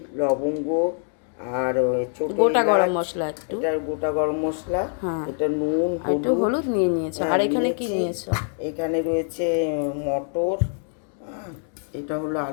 লবঙ্গ আর ছোট গোটা গরম এলাচ। মশলা একটু, এটা গোটা গরম মশলা। হ্যাঁ, এটা নুন, আর একটু হলুদ নিয়ে নিয়েছো। আর এখানে কি নিয়েছো? এখানে রয়েছে মটর, এটা হলো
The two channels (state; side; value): silent; right; 62 dB below the other